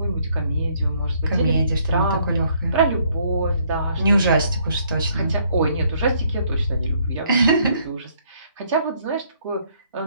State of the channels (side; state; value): both; inverted; correlation -0.67